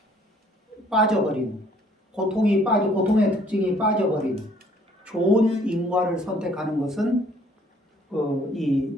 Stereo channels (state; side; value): normal; both; correlation 0.60